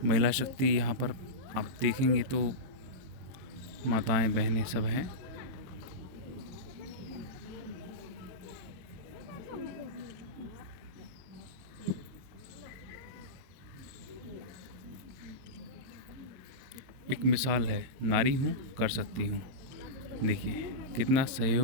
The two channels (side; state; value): left; late; 23 ms